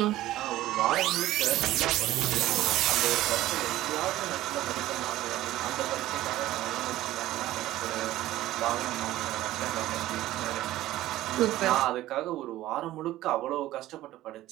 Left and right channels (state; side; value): quieter; left; 15.2 dB